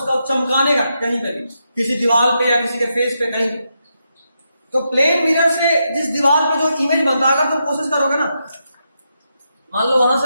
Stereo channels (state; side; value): inverted; both; correlation -0.83